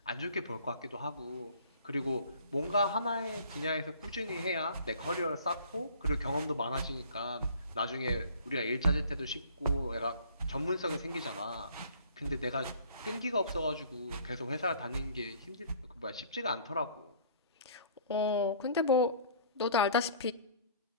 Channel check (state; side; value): inverted; both; correlation -0.52